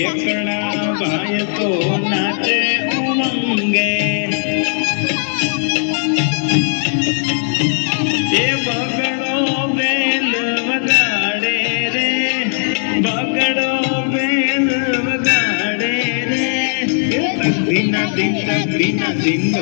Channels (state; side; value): silent; right; 65 dB below the other